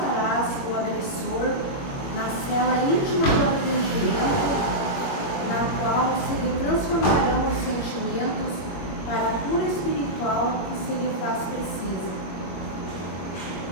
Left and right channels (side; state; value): right; late; 21 ms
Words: o agressor na cela íntima do arrependimento, na qual se lhe transformarão os sentimentos para a cura espiritual que se lhe faz precisa.